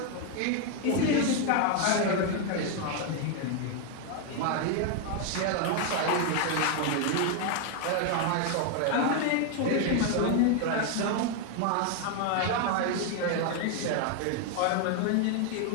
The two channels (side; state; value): both; different; correlation 0.01